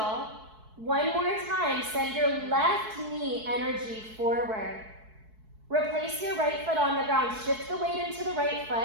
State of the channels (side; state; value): left; late; 4.6 ms